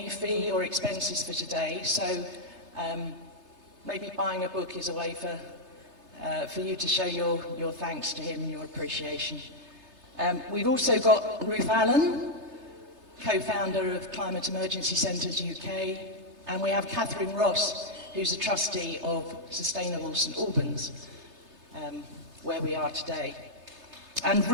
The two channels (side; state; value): left; late; 3.3 ms